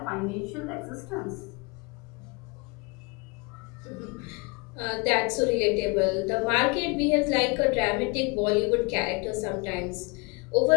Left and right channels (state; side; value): quieter; right; 29.9 dB